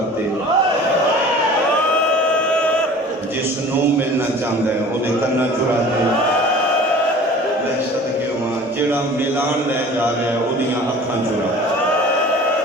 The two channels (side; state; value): both; normal; correlation 0.44